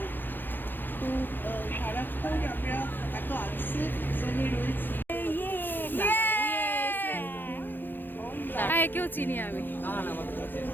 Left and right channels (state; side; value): late; right; 0.094 ms